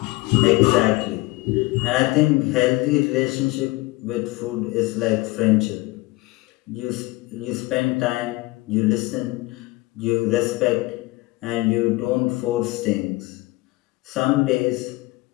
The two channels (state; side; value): quieter; right; 21.5 dB